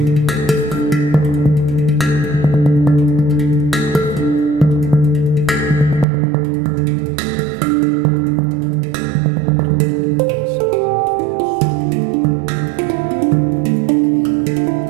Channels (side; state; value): left; drops out; at 6.1 s